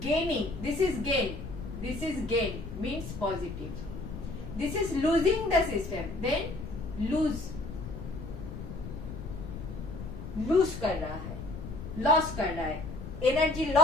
gaining, this is gain means positive. This is losing the system, then lose कर रहा है, loss कर रहा है, एनर्जी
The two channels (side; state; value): left; noise; rumble, 9 dB below the sound